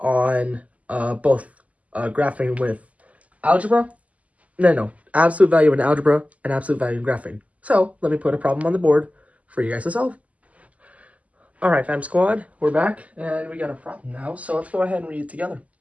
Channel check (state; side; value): late; left; 0.071 ms